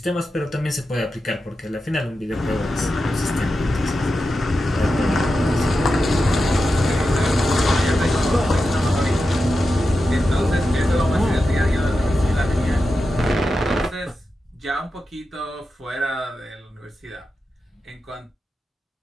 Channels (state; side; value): normal; both; correlation 0.90